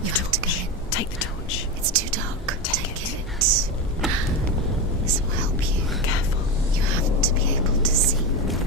You have to go in. Take the torch. It's too dark. Take it. This will help you. Careful. You have to be able to see.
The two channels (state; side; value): normal; both; correlation 0.17